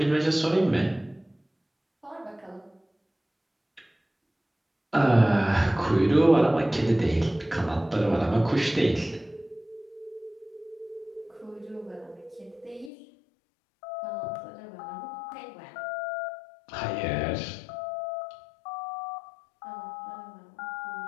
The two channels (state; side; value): drops out; right; at 12.9 s